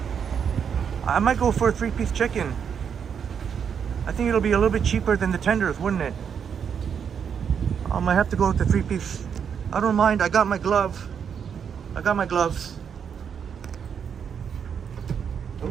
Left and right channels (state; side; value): quieter; left; 7.3 dB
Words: I might go for a 3-piece chicken. I think it'll be a little bit cheaper than the tenders, wouldn't it? I might have to go with the 3-piece. I don't mind. I got my glove. I got my gloves.